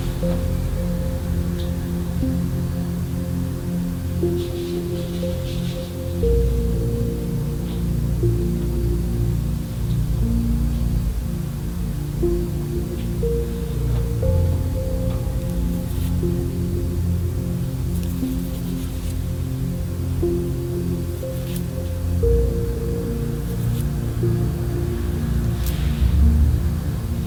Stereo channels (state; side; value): identical; both; correlation 1.00